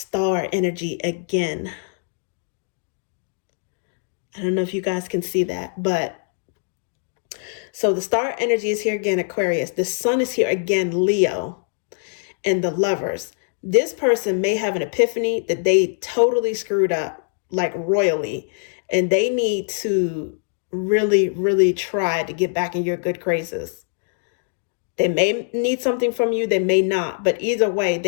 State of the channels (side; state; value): right; silent; digital silence